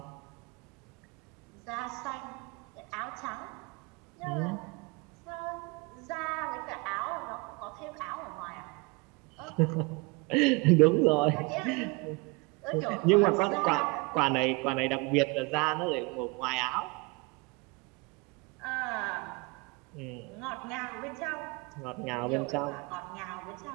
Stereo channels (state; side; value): quieter; left; 27.0 dB